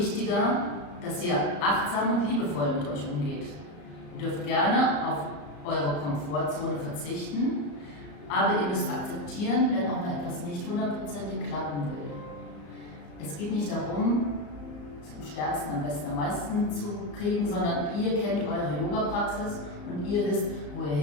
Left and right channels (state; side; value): late; right; 34 ms